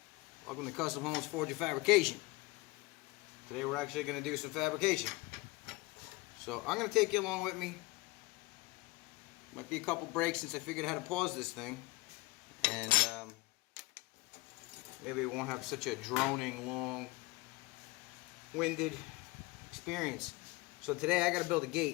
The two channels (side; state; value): right; quieter; 22.7 dB